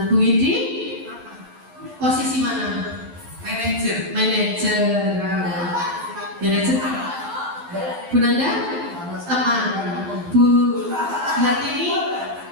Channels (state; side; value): late; left; 12 ms